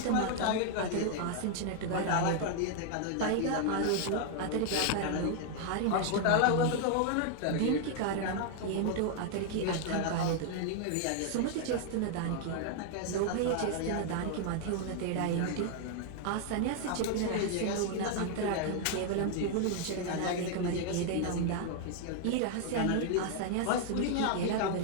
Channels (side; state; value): both; different; correlation 0.00